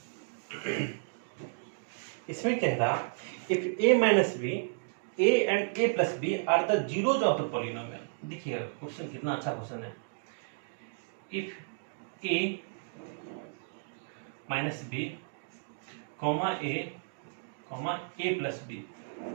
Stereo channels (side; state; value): left; silent; digital silence